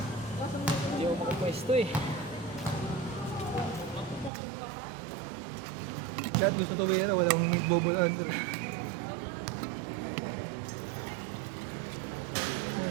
Hindi ako makapwesto eh. Lahat dito tuloy yan, wala akong bobolaan.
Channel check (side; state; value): left; drops out; at 4.3 s